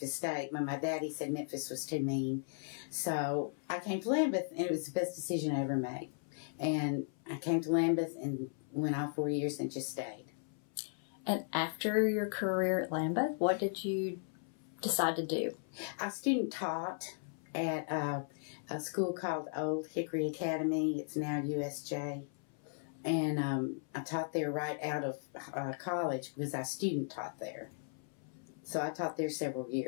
State. My daddy said Memphis was too mean. So I came to Lambeth, and it was the best decision I ever made. And I came to Lambeth and went all 4 years and just stayed. And after your career at Lambeth, what did you decide to do? I student taught at a school called Old Hickory Academy. It's now USJ. And I taught there right out of college because I student taught there. So I taught there several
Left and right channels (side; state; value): right; silent; 53 dB below the other